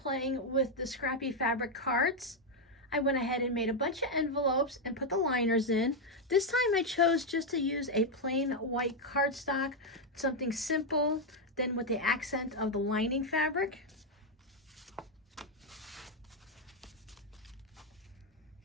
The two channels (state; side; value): normal; both; correlation 0.02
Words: with the scrappy fabric cards. I went ahead and made a bunch of envelopes and put the liners in. This time I chose just to use a plain white cardstock, something simple, then with the accent of the lining fabric.